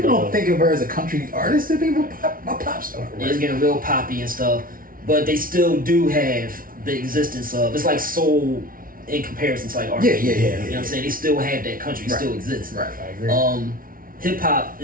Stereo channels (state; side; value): late; left; 0.41 ms